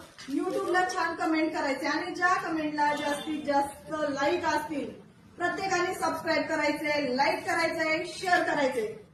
युट्यूबला छान कमेंट करायचे आणि ज्या कमेंटला जास्तीत जास्त लाईक असतील प्रत्येकाने सबस्क्राईब करायचे, लाईक करायचंय, शेअर करायचे.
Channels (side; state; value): both; identical; correlation 1.00